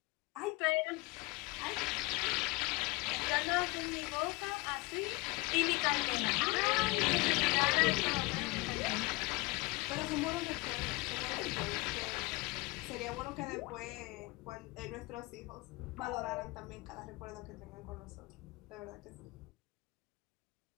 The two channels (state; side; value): quieter; right; 24.1 dB